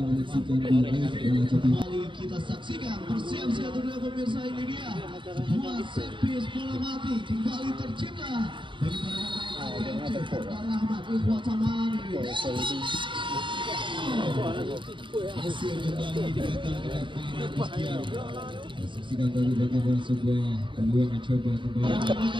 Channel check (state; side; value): late; left; 0.24 ms